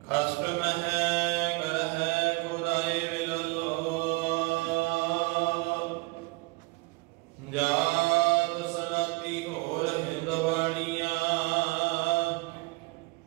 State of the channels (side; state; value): left; quieter; 25.3 dB